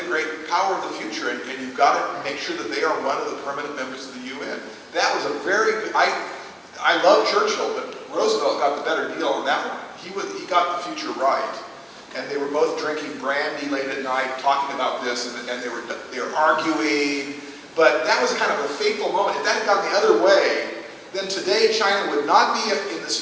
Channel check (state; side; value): identical; both; correlation 1.00